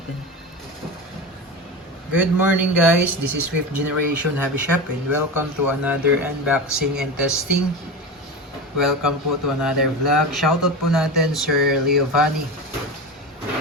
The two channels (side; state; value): both; normal; correlation 0.24